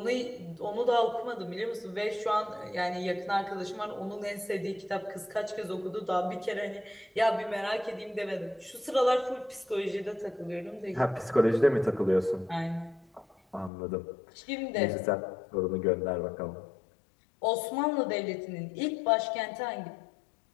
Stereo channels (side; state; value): right; drops out; at 13.7 s